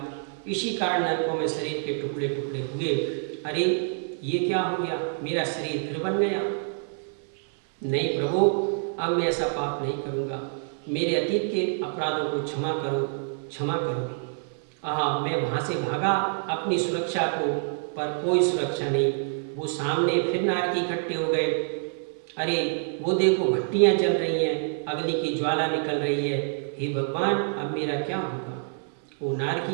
इसी कारण नरकों में शरीर के टुकड़े टुकड़े हुए। अरे ये क्या हो गया, मेरा शरीर फिर बन गया? नहीं प्रभु, अब मैं ऐसा पाप नहीं करूँगा। मेरे अतीत के अपराधों को क्षमा करो, क्षमा करो। मैं वहाँ से भागा अपनी सुरक्षा को, पर कोई सुरक्षा नहीं। वो सामने फिर नारकी इकट्ठे हो गए। अरे वो देखो, भट्टियाँ जल रही हैं, अग्नि की ज्वाला निकल रही है। हे भगवान, अब मेरा क्या होगा? वो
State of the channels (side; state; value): left; silent; 60 dB below the other